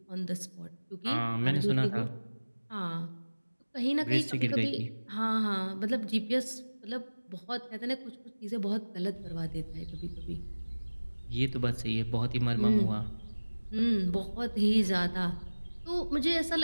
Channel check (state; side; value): inverted; both; correlation -1.00